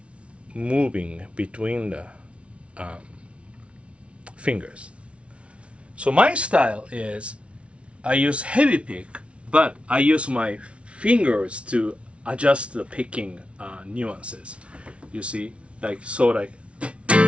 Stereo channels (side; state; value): left; late; 0.061 ms